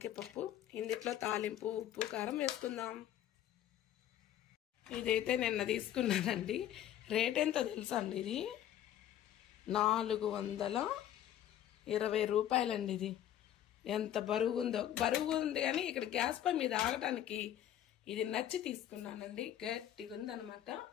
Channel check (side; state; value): right; quieter; 11.5 dB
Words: పప్పు. ఇందులో తాలింపు ఉప్పు కారం వేసుకుందాం. ఇదైతే నిన్న తీసుకున్నానండి. రేట్ ఎంతో తెలుసా అండి, ఇది 420 రూపాయలండి. ఇది ఎంత బరువు ఉందో, బరువు ఉంది కానీ ఇక్కడ గ్యాస్ పై మీద ఆగటానికి ఇది నచ్చి తీసుకున్నానండి. గట్టిగా ఉందనమాట.